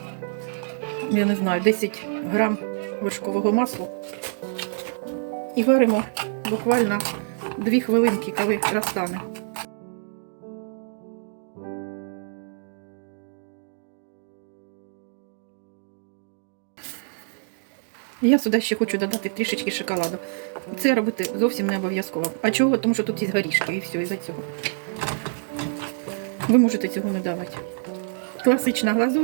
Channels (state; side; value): silent; left; digital silence